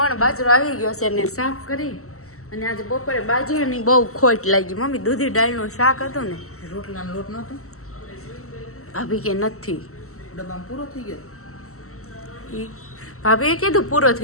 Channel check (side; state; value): right; late; 0.63 ms